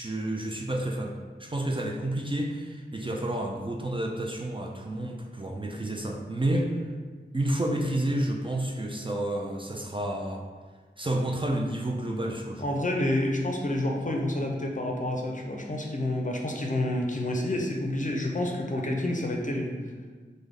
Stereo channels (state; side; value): normal; both; correlation 0.78